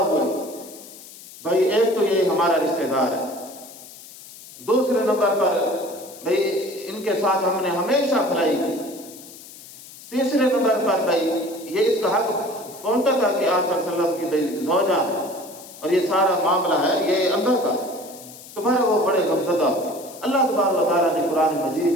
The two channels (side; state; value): left; noise; hiss, 18 dB below the sound